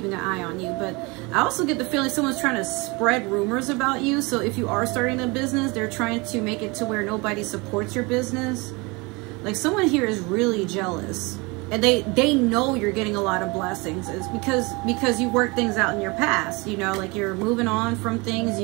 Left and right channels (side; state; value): left; quieter; 26.6 dB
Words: an eye on you. But I also get the feeling someone's trying to spread rumors about you. So if you are starting a business, they're trying to make it to where nobody supports your business. Like, someone here is really jealous, and they know you're getting a lot of blessings. It's because you work things out in your past, you know, like you're moving on from things,